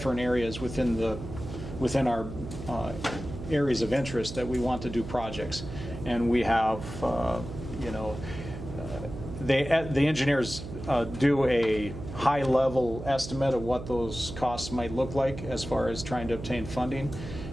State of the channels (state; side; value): noise; right; hum, 10 dB below the sound